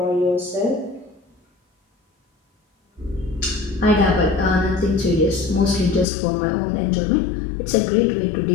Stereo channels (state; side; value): drops out; right; at 6.1 s